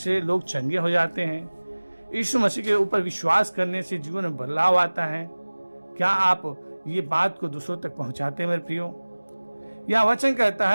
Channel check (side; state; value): both; inverted; correlation -1.00